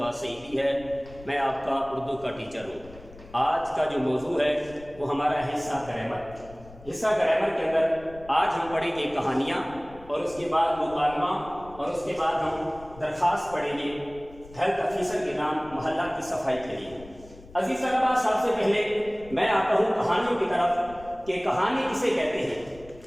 سعیدی ہے، میں آپ کا اردو کا ٹیچر ہوں۔ آج کا جو موضوع ہے وہ ہمارا ہے حصہ گرامر۔ حصہ گرامر کے اندر آج ہم پڑھیں گے کہانیاں، اور اس کے بعد مکالمہ، اور اس کے بعد ہم درخواست پڑھیں گے ہیلتھ آفیسر کے نام محلہ کی صفائی کے لیے۔ عزیز طلبہ، سب سے پہلے میں آتا ہوں کہانیوں کی طرف کہ کہانی کسے کہتے ہیں۔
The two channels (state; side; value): noise; left; rumble, 20 dB below the sound